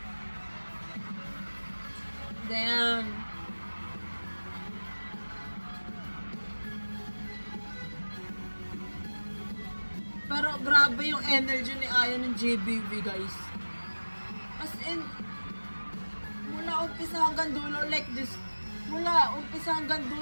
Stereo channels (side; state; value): both; inverted; correlation -1.00